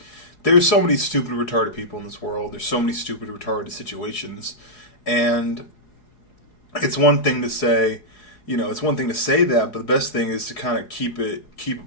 there's so many stupid, retarded people in this world. There's so many stupid, retarded situations. And it's one thing to say, that, but the best thing is to kind of keep it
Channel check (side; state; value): right; late; 4.8 ms